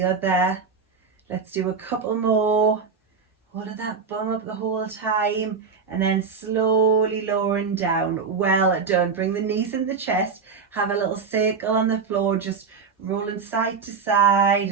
other. Let's do a couple more. Hold that bum up the whole time and then slowly lowering down. Well done. Bring the knees in the chest. Have a little circle on the floor, just rolling side to side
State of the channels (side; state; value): left; quieter; 5.4 dB